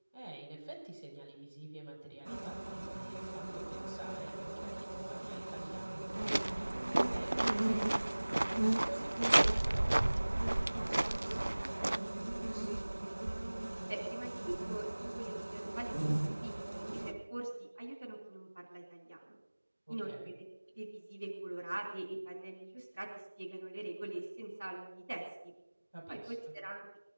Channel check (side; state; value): both; inverted; correlation -1.00